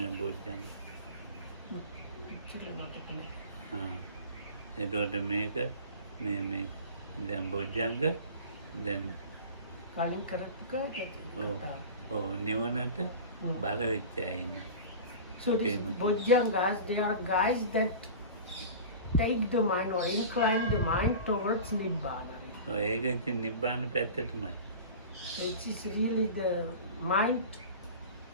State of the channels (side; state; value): both; inverted; correlation -0.35